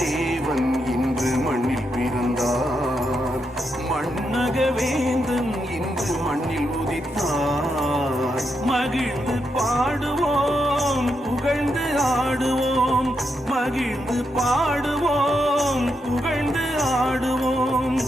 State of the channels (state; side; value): normal; both; correlation 0.82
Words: தேவன் இன்று மண்ணில் பிறந்தார், மண்ணக வேந்தன் இன்று மண்ணில் உதித்தார். மகிழ்ந்து பாடுவோம், புகழ்ந்து ஆடுவோம், மகிழ்ந்து பாடுவோம், புகழ்ந்து ஆடுவோம்.